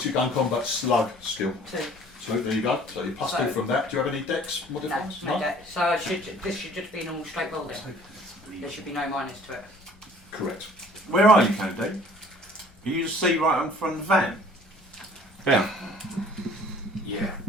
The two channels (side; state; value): left; noise; rumble, 28 dB below the sound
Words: your gun combat slug skill? 2. So there you go. So you plus 2 from that. Do you have any dex No, modifiers? no debt. So this should just be normal straight roll then. There should be no minus to it. Correct. Where are you, Cody? Can you just see right in front of the van? Down. Yeah,